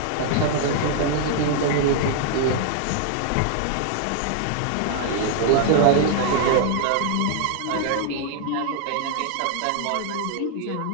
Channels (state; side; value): different; both; correlation 0.00